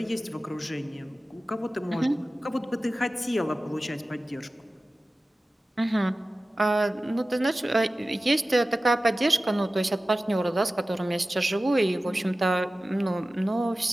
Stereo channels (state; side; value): normal; both; correlation 0.96